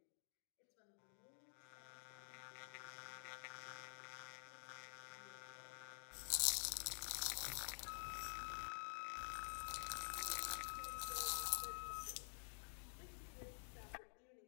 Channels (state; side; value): silent; right; digital silence